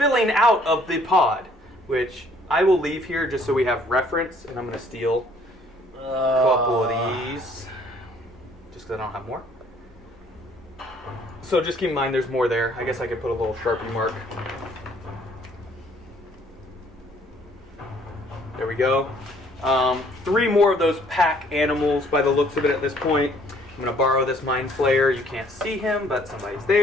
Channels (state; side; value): normal; both; correlation 0.61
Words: out of the pod, which I will leave here just so we have reference, and I'm going to steal a couple of these. Just because I don't have more. So just keep in mind there's more there. I guess I could put a little Sharpie mark. There we go. 3 more of those pack animals by the looks of it at this point. I'm going to borrow this Mind Flayer. You can't see him, but somebody's